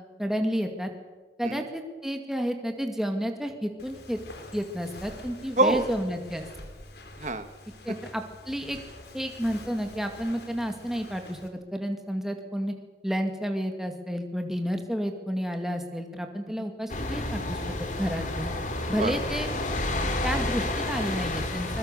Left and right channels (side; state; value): both; normal; correlation 0.66